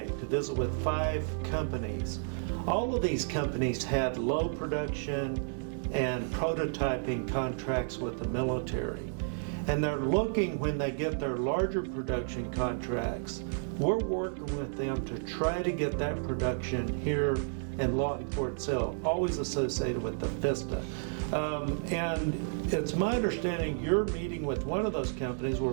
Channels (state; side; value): silent; left; 56 dB below the other